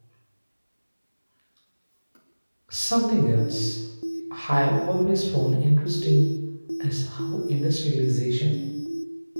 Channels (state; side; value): inverted; both; correlation -1.00